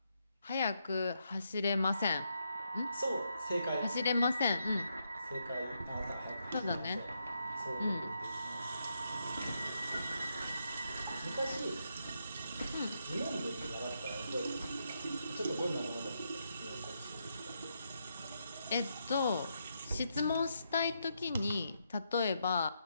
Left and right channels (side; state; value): both; inverted; correlation -0.80